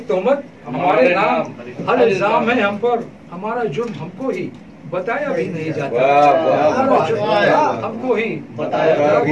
तोहमत हमारे नाम, हर इल्जाम है हम पर। हमारा जुर्म हमको ही बताया भी नहीं जाता, हमको ही बताया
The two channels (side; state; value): both; identical; correlation 1.00